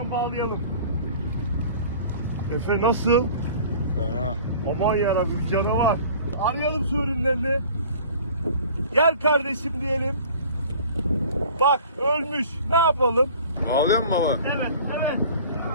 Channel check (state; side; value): inverted; both; correlation -0.46